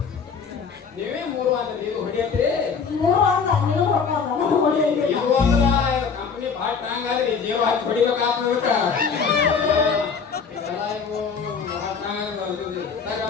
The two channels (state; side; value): quieter; right; 5.8 dB